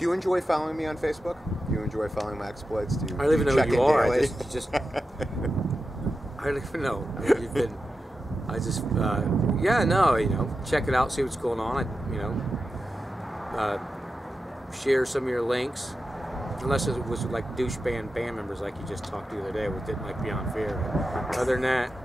you enjoy following me on Facebook? Do you enjoy follling my exploits? I don't even know who you are. Daily? I don't even know. I mean, you've been. Check it out, see what's going on. Share some of your links. Unless it was like douche band members like you just talked to the other day, which didn't like Beyond Fear. But other than that,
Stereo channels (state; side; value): normal; both; correlation 0.91